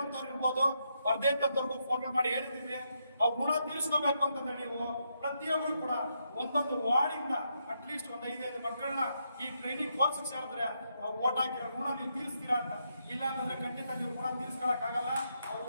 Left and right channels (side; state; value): both; inverted; correlation -0.80